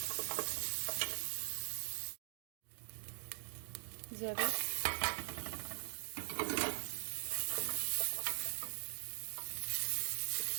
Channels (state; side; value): silent; left; digital silence